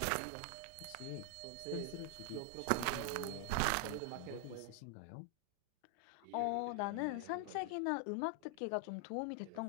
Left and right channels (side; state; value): both; different; correlation 0.00